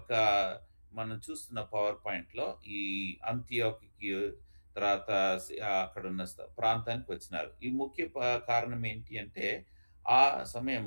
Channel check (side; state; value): both; inverted; correlation -1.00